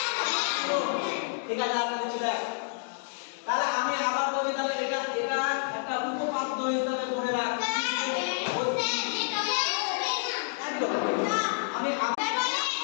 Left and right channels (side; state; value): right; silent; digital silence